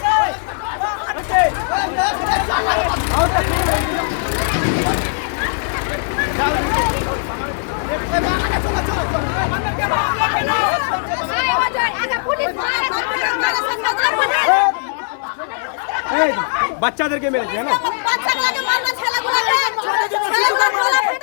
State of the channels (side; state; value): right; silent; 63 dB below the other